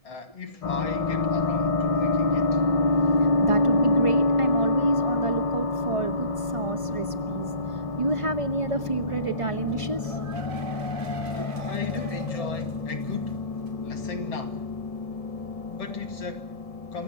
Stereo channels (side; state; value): right; late; 1.7 ms